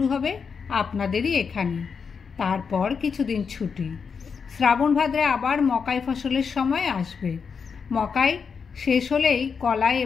হবে আপনাদেরই এখানে। তারপর কিছুদিন ছুটি। শ্রাবণ ভাদ্রে আবার মকাই ফসলের সময় আসবে। মকাই শেষ হলেই কলাই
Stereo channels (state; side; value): quieter; right; 5.9 dB